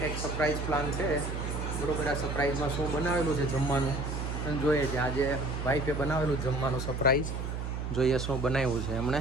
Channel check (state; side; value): noise; right; hum, 4 dB below the sound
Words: surprise plan છે બરોબર. આ સરપ્રાઈઝમાં શું બનાવેલું છે જમવાનું અને જોઈએ છે. આજે વાઈફે બનાવેલું જમવાનું સરપ્રાઈઝ, જોઈએ શું બનાવ્યું છે એમણે.